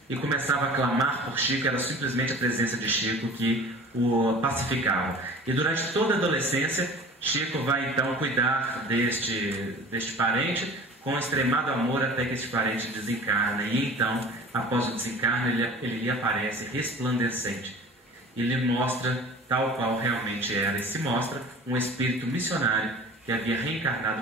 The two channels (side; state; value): both; normal; correlation 0.42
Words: e começava a clamar por Chico. Era simplesmente a presença de Chico que o pacificava. E durante toda a adolescência, Chico vai então cuidar deste parente com extremado amor, até que este parente desencarna. E então, após o desencarno, ele lhe aparece resplandecente e lhe mostra tal qual realmente era, e se mostra um espírito missionário que havia